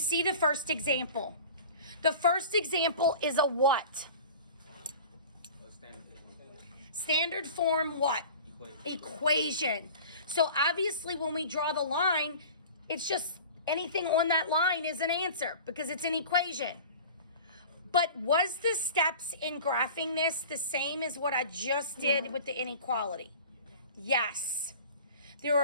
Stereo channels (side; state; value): both; inverted; correlation -0.39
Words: the first example. The first example is a what? Standard form what? Equation. So obviously when we draw the line, it's just anything on that line is an answer because it's an equation. But was the steps in graphing this the same as what I just did with the inequality? Yes. There